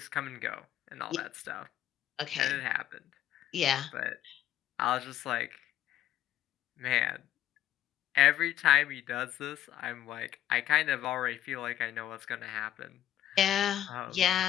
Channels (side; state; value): right; quieter; 11.9 dB